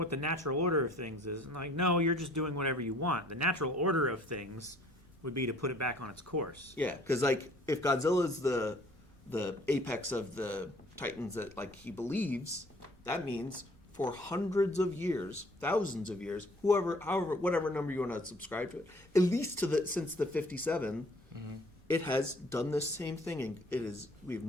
the natural order of things is. And like, no, you're just doing whatever you want. The natural order of things would be to put it back on its course. Yeah, because like if Godzilla's the apex of the Titans that like he believes, that means for hundreds of years, thousands of years, whatever number you want to subscribe to it, at least since the 57, it has done this same thing, and we've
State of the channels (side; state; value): right; noise; rumble, 30 dB below the sound